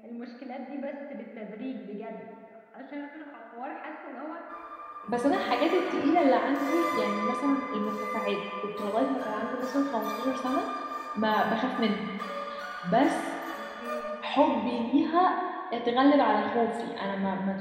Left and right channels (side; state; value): both; identical; correlation 1.00